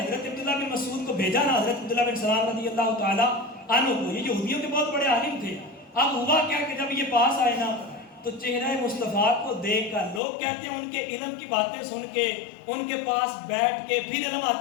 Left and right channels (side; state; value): right; drops out; at 10.2 s